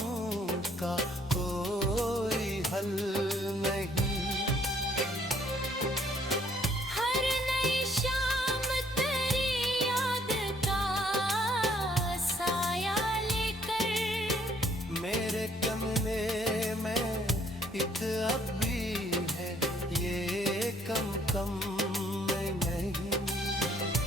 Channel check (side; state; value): both; normal; correlation 0.64